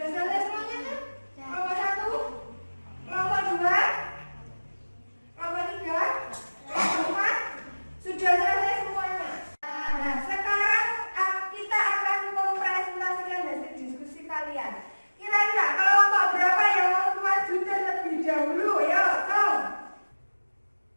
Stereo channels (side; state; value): both; inverted; correlation -1.00